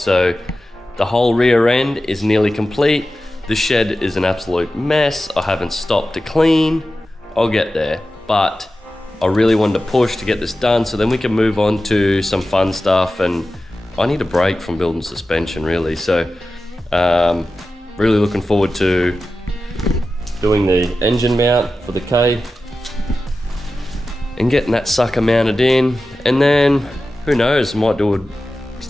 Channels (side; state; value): both; normal; correlation 0.93